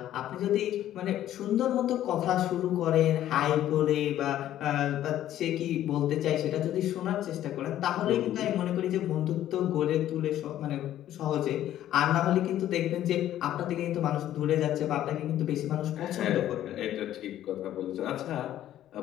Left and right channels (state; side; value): quieter; right; 12.4 dB